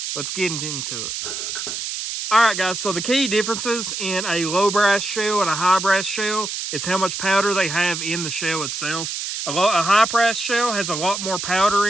Let's get into it. Alright guys, so the key differences in a low brass shell and a high brass shell is how much powder they have in the shell itself. A high brass shell has a lot more powder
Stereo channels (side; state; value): right; noise; hiss, 5 dB below the sound